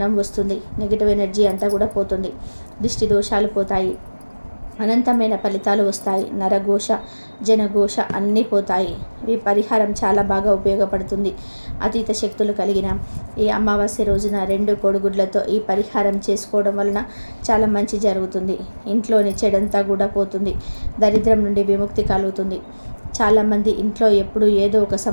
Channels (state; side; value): inverted; both; correlation -1.00